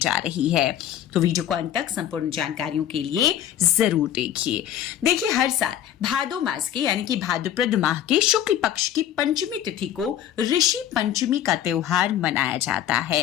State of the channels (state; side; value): quieter; right; 10.9 dB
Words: रही है। तो वीडियो को अंत तक संपूर्ण जानकारियों के लिए जरूर देखिए। हर साल भादो मास के यानी कि भाद्रपद माह के शुक्ल पक्ष की पंचमी तिथि को ऋषि पंचमी का त्योहार मनाया जाता है।